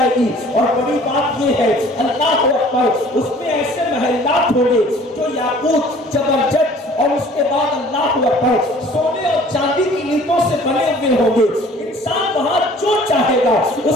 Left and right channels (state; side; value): normal; both; correlation 0.51